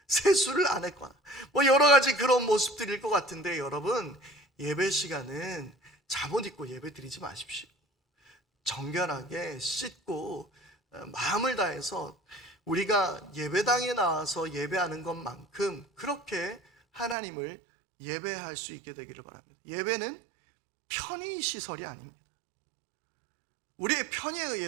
세수를 안 했거나 뭐 여러 가지 그런 모습들일 것 같은데, 여러분 예배 시간은 잠옷 입고 예배 드리지 마십시오. 정결하게 씻고 마음을 다해서 우리가 예배당에 나와서 예배하는 것만큼 그렇게 하나님을 예배할 수 있게 되기를 바랍니다. 예배는 편의 시설이 아닙니다. 우리의 편의에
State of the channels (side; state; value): left; drops out; at 17.2 s